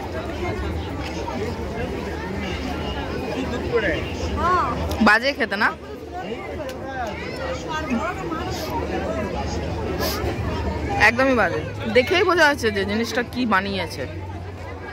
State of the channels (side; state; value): both; identical; correlation 1.00